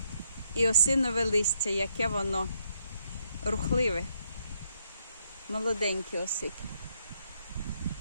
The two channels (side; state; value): both; inverted; correlation -0.74